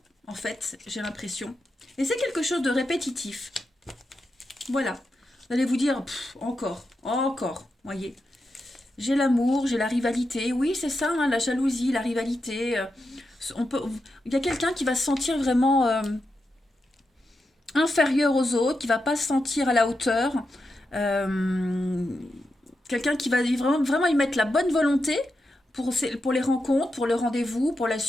en fait, j'ai l'impression. Et c'est quelque chose de répétitif. Voilà. Vous allez vous dire, encore, voyez. J'ai l'amour, j'ai la rivalité. Oui, c'est ça, hein, la jalousie, la rivalité. Il y a quelqu'un qui va se sentir vraiment inférieur aux autres, qui va pas se sentir à la hauteur. Quelqu'un qui va vraiment y mettre la bonne volonté pour les rencontres, pour le rendez-vous, pour la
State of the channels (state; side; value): normal; both; correlation 0.87